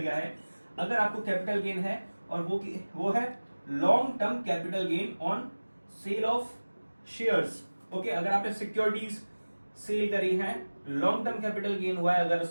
है। अगर आपको कैपिटल गेन है और वो है long term capital gain on sale of shares. Okay, अगर आपने सिक्योरिटीज सेल करी है, लॉन्ग टर्म कैपिटल गेन हुआ है अगर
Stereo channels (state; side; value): inverted; both; correlation -1.00